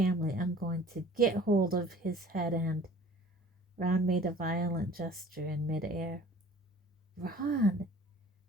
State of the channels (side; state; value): both; normal; correlation 0.48